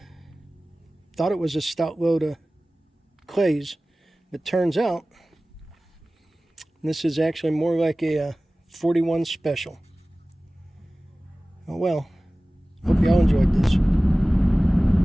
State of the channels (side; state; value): both; normal; correlation 0.97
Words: it was a stout load of clays, but turns out this is actually more like a 41 special. Oh well, hope y'all enjoyed this.